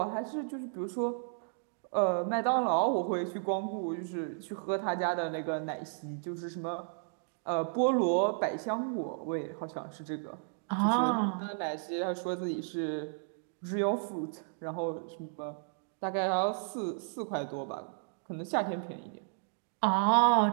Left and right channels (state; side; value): silent; left; digital silence